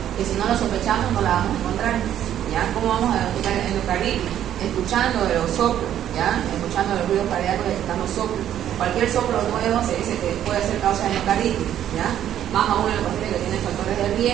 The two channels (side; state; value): left; quieter; 10.9 dB